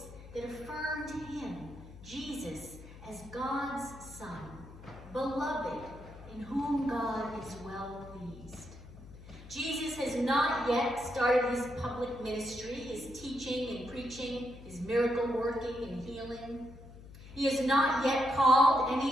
that affirmed him, Jesus, as God's Son, beloved, in whom God is well pleased. Jesus has not yet started his public ministry, his teaching and preaching, his miracle working and healing. He has not yet called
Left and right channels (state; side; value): noise; left; hum, 17 dB below the sound